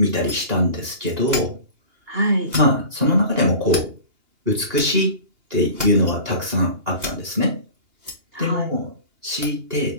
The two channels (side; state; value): left; late; 2.8 ms